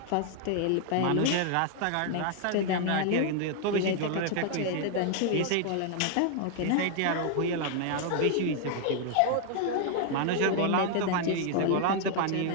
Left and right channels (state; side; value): different; both; correlation 0.00